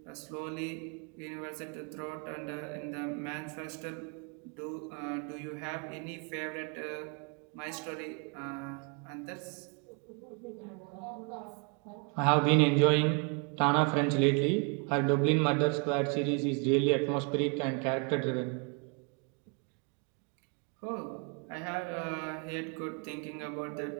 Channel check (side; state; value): left; quieter; 35.4 dB